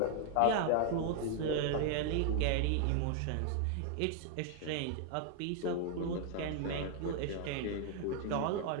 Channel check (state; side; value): different; both; correlation 0.00